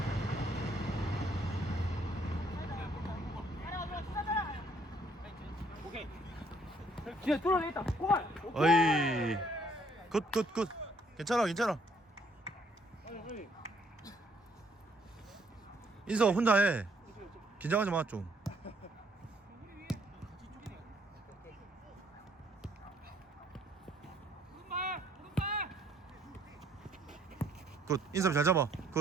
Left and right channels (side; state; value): both; normal; correlation 0.66